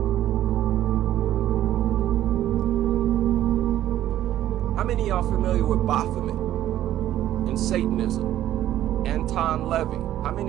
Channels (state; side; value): quieter; left; 12.7 dB